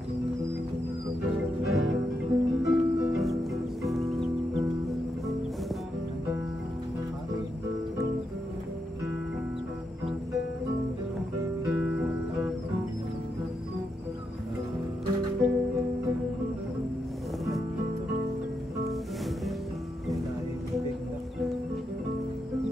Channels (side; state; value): both; normal; correlation 0.83